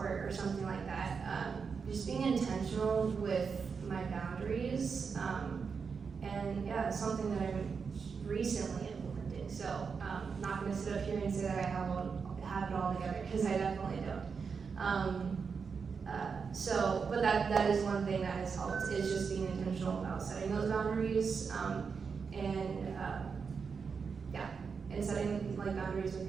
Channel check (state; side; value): quieter; left; 5.6 dB